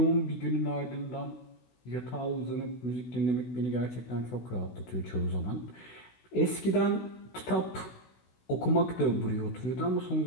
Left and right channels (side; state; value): right; late; 16 ms